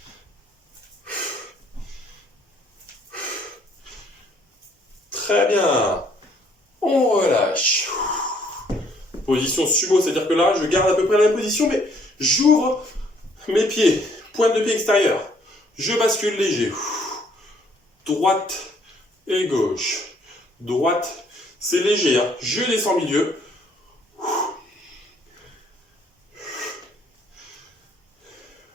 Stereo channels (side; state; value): both; normal; correlation 0.64